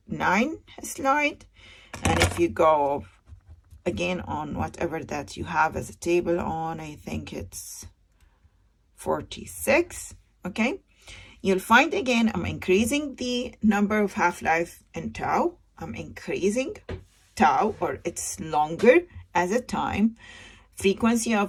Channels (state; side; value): identical; both; correlation 1.00